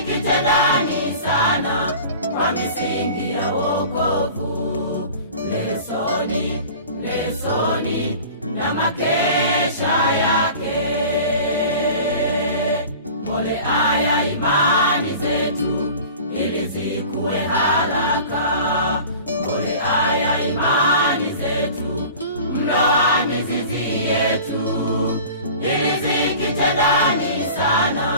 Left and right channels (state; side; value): inverted; both; correlation -0.41